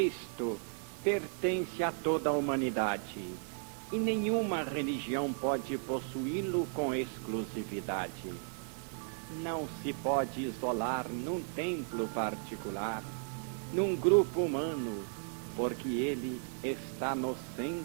pertence a toda a humanidade, e nenhuma religião pode possuí-lo com exclusividade. Não se pode isolar num templo particular, num grupo humano, porque ele está no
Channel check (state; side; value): silent; left; 54 dB below the other